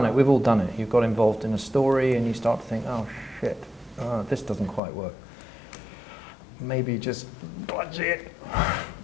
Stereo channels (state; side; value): drops out; right; at 4.8 s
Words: it. We've all done it. You've got involved in a story and you start to think, oh, shit, this doesn't quite work. Maybe just dodge it.